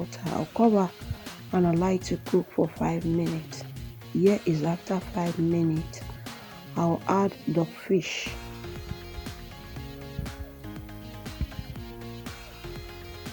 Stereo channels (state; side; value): identical; both; correlation 1.00